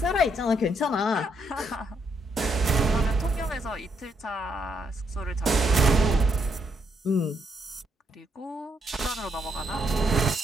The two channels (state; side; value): normal; both; correlation 0.75